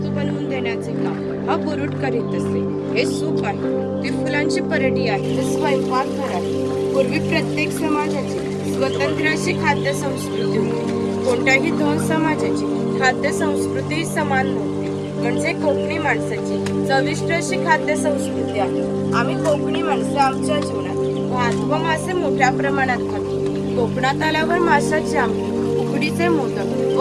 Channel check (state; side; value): identical; both; correlation 1.00